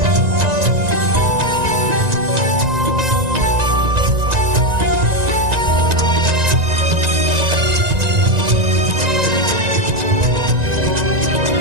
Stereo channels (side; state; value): left; late; 1.9 ms